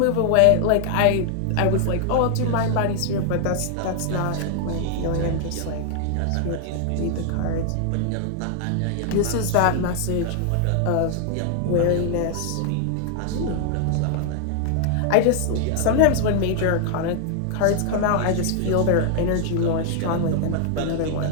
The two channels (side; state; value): both; different; correlation 0.00